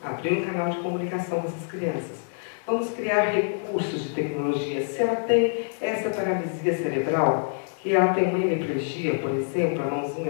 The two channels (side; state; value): right; silent; digital silence